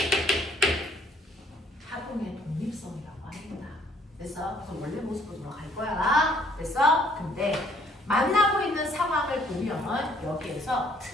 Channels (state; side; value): normal; both; correlation 0.63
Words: 파동의 독립성이라고 합니다. 그래서 원래 모습으로 돌아갈 거야. 그래서 근데 만나고 있는 상황을 보면 여기에서